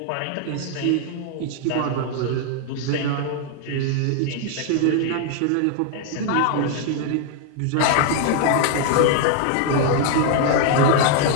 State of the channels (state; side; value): different; both; correlation 0.00